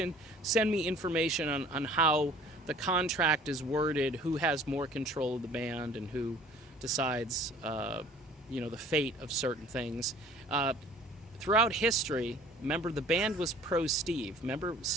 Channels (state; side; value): normal; both; correlation 0.51